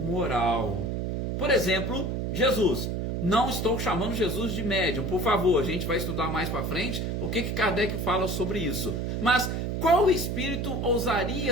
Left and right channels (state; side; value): noise; right; hum, 1 dB below the sound